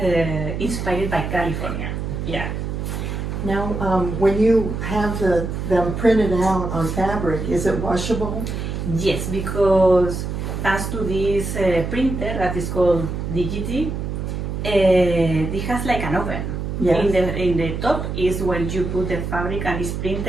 inspired by California, yeah. Now, when you have them printed out on fabric, is it washable? Yes, because thanks to this printer that is called Digity, it has like an oven. Yes. In the top is where you put the fabric, and it's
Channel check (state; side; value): noise; right; hum, 4 dB below the sound